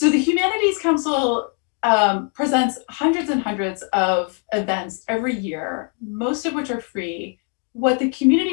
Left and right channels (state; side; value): quieter; right; 37.4 dB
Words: the Humanities Council presents hundreds and hundreds of events every year, most of which are free. What the